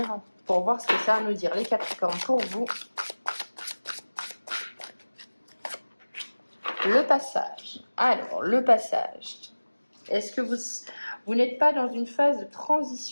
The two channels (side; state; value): both; inverted; correlation -1.00